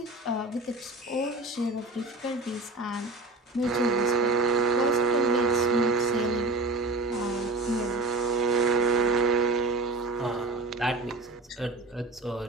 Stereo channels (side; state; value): left; quieter; 3.2 dB